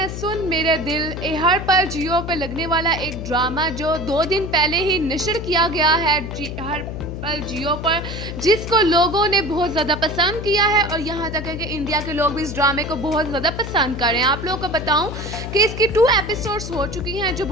सुन मेरे दिल ए हर पल जियो पे लगने वाला एक ड्रामा जो 2 दिन पहले ही नशर किया गया है हर पल जियो पर, जिसको लोगों ने बहुत ज़्यादा पसंद किया है और यहाँ तक है कि इंडिया के लोग भी इस ड्रामे को बहुत ज़्यादा पसंद कर रहे हैं। आप लोगों को बताऊं कि इसकी 2 एपिसोड्स हो चुकी हैं जो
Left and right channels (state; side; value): noise; left; hum, 7 dB below the sound